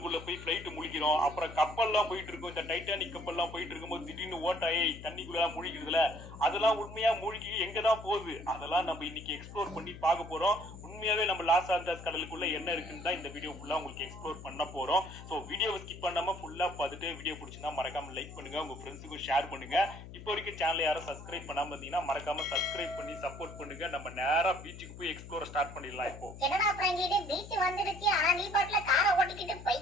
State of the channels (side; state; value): left; noise; hum, 14 dB below the sound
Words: போய் பிளைட் முழிக்கிறோம். அப்புறம் கப்பல்லாம் போயிட்டு இருக்கும். இந்த டைட்டானிக் கப்பல்லாம் போயிட்டு இருக்கும்போது திடீர்னு ஓட்டாயி தண்ணிக்குள்ள முழிக்கிறதுல அதெல்லாம் உண்மையா மூழ்கி எங்கதான் போகுது, அதெல்லாம் நம்ம இன்னைக்கு எக்ஸ்ப்ளோர் பண்ணி பார்க்க போறோம். உண்மையாவே நம்ம லாஸ் ஆண்டஸ் கடலுக்குள்ள என்ன இருக்குன்னு தான் இந்த வீடியோ ஃபுல்லா உங்களுக்கு எக்ஸ்ப்ளோர் பண்ண போறோம். ஸோ வீடியோவை ஸ்கிப் பண்ணாம ஃபுல்லா பார்த்துட்டு வீடியோ பிடிச்சிருந்தா மறக்காம லைக் பண்ணுங்க, உங்க ஃப்ரெண்ட்ஸுக்கும் ஷேர் பண்ணுங்க. இப்போ வரைக்கும் சேனல் யாரும் சப்ஸ்கிரைப் பண்ணாம இருந்தீங்கன்னா மறக்காம சப்ஸ்கிரைப் பண்ணி சப்போர்ட் பண்ணுங்க. நம்ம நேரா பீச்சுக்கு போய் எக்ஸ்ப்ளோர் ஸ்டார்ட் பண்ணிடலாம். இப்போ என்னடா பிராங்க்லின், பீச் வந்துடுச்சு, ஆனா நீ பாட்டுல காரை ஓட்டிக்கிட்டு